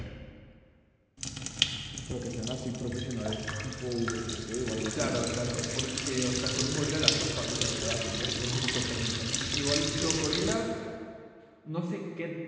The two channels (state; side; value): identical; both; correlation 1.00